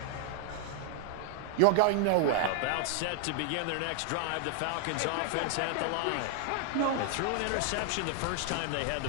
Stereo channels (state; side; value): different; both; correlation 0.00